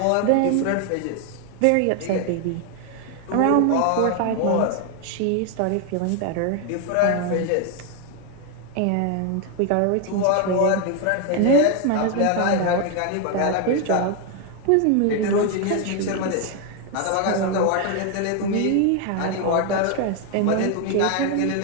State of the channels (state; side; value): different; both; correlation 0.01